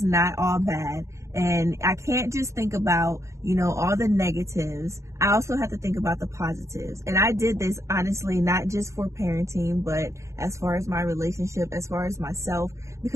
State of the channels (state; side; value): late; left; 0.14 ms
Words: not all bad. And I can't just think about, all the negatives. I also have to think about the positives. And I did this, honestly, not just for parenting, but as far as my relationship, as far as myself,